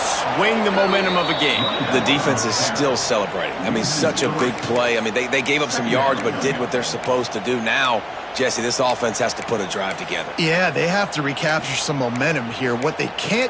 the momentum of a game. The defense is still celebrating. I mean, such a big play. I mean, they gave up some yards but did what they're supposed to do. Now, Jesse, this offense has to put a drive together. Yeah, they have to recapture some momentum here. What they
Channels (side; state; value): both; identical; correlation 1.00